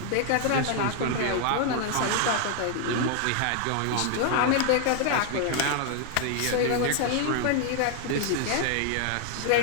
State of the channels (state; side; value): different; both; correlation 0.00